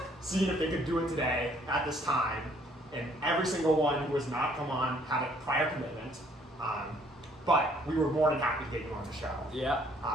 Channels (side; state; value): both; normal; correlation 0.63